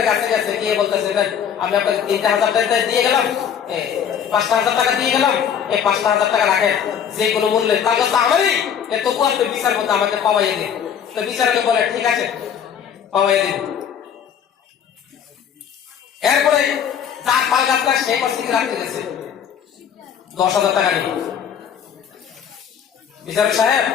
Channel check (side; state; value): right; quieter; 8.3 dB